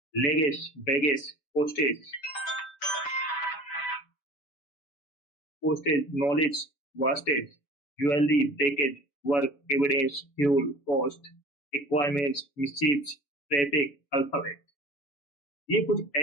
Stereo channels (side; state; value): right; late; 7.0 ms